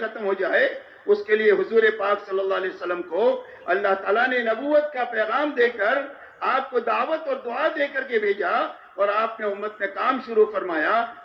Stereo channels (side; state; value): both; identical; correlation 1.00